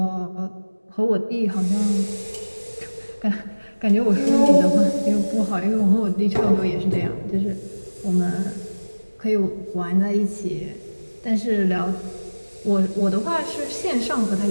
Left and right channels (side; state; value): both; inverted; correlation -1.00